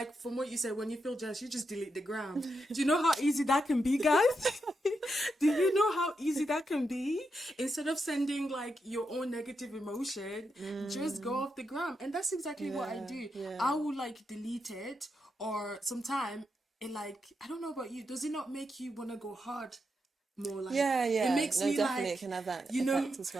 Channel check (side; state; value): both; normal; correlation 0.84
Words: from what you said, when you feel jealous, you just delete the gram. Do you know how easy that can be, guys? Do you know how easy that can be? Instead of sending like your own negative emotion, just go off the gram. And that's exactly what I do. I will like delete it, or sometime it like, I don't know about you, does it not make you want to go hard more? Like it makes no, me definitely like, it can have that you know, effect as